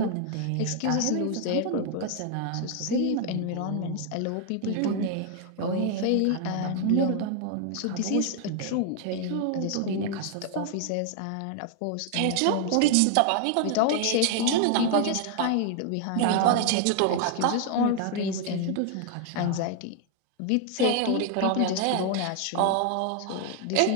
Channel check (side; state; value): both; different; correlation 0.00